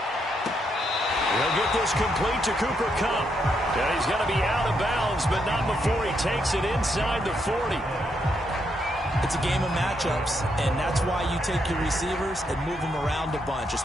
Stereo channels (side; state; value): both; normal; correlation 0.78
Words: He'll get this complete to Cooper Kupp. And he's going to be out of bounds, but not before he takes it inside the 40. It's a game of matchups, and that's why you take your receivers and move them around a bunch,